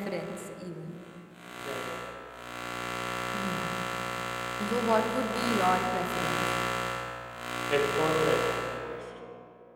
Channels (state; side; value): identical; both; correlation 1.00